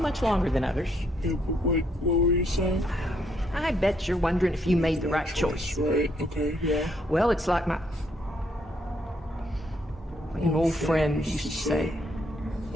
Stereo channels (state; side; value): normal; both; correlation 0.72